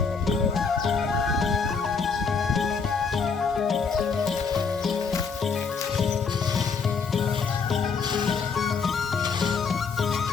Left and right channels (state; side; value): quieter; right; 5.4 dB